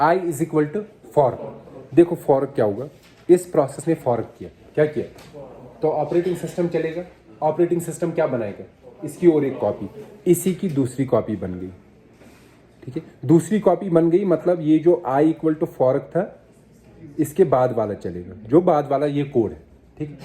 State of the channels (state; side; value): identical; both; correlation 1.00